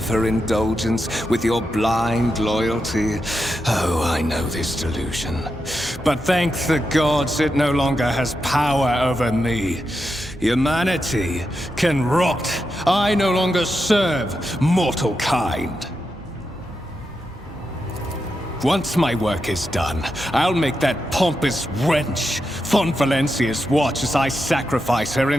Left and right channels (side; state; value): both; normal; correlation 0.87